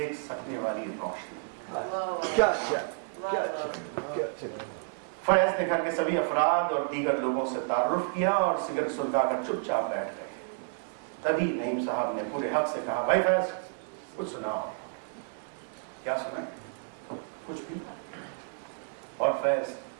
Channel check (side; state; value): left; silent; digital silence